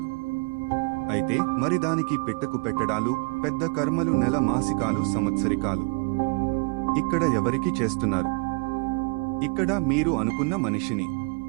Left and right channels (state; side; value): quieter; left; 31.3 dB